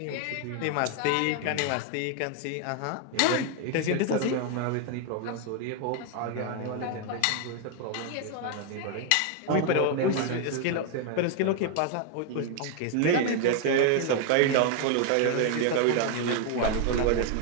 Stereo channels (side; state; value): both; different; correlation 0.01